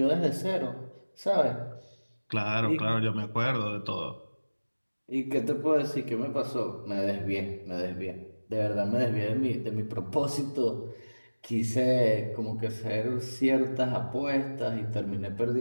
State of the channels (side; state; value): both; inverted; correlation -1.00